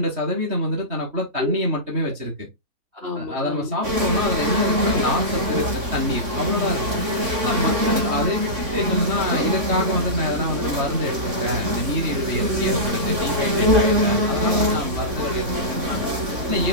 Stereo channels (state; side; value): late; left; 3.6 ms